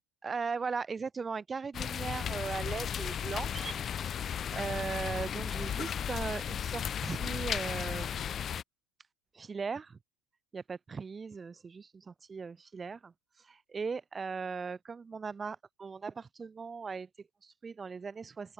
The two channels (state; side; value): normal; both; correlation 0.77